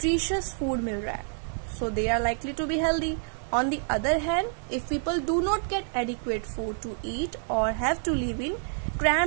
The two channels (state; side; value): silent; left; digital silence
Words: food मिल रहा है. So they are likely to be healthy. On the other hand, if people do not get adequate food to eat or have to live in